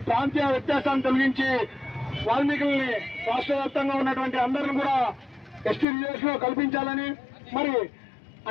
ప్రాంతీయ వ్యత్యాసాన్ని తొలగించి వాల్మీకుల్ని రాష్ట్ర వ్యాప్తంగా ఉన్నటువంటి అందరిని కూడా ఎస్టీ రిజర్వేషన్ లో కల్పించాలని, మరి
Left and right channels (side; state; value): right; drops out; at 5.9 s